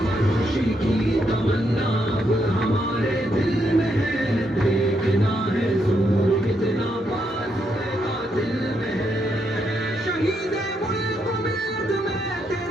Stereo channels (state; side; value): normal; both; correlation 0.78